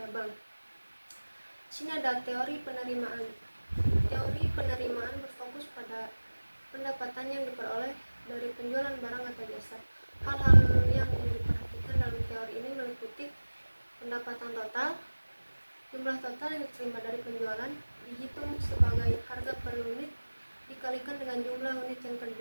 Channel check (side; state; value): both; inverted; correlation -1.00